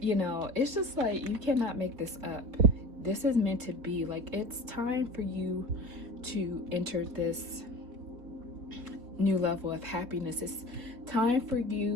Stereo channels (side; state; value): left; late; 4.1 ms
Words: know, it's just like, you cannot make this up. This is meant to be. Like, it's time for you to enter this new level of happiness. It's time for